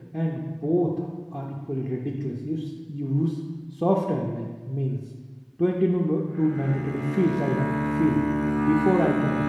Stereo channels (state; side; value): identical; both; correlation 1.00